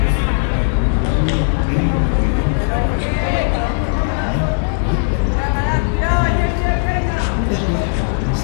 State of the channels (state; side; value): silent; right; digital silence